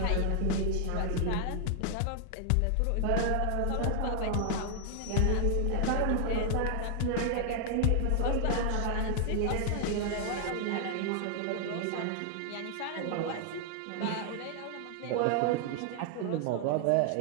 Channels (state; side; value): different; both; correlation 0.00